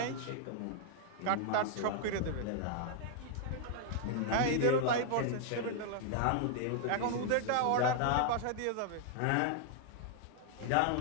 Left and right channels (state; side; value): different; both; correlation 0.00